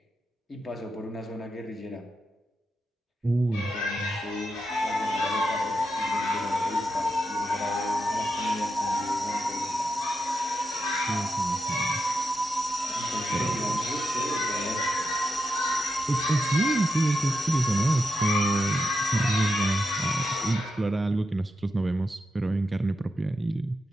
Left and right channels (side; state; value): both; normal; correlation 0.87